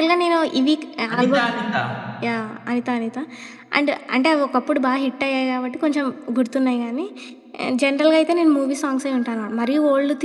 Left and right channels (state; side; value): identical; both; correlation 1.00